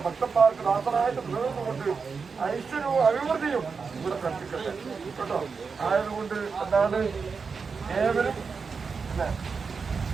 ഭക്തന്മാർക്ക് ദാസനായിട്ട് നിലനിന്നുകൊണ്ട് ഐശ്വര്യവും അഭിവൃദ്ധിയും ഇവിടെ കൽപ്പിക്കട്ടെ കേട്ടോ. ആയതുകൊണ്ട് എന്താണ് ഏവരും അല്ലെ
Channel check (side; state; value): left; quieter; 5.2 dB